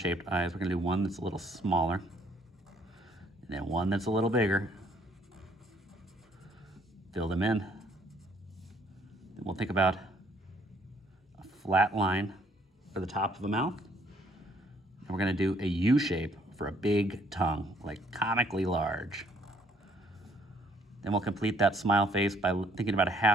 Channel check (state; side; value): normal; both; correlation 0.64